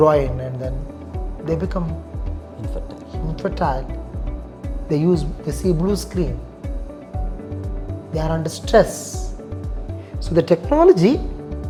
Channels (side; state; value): both; identical; correlation 1.00